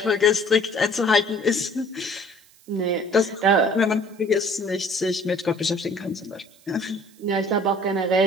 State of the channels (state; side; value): noise; right; hiss, 28 dB below the sound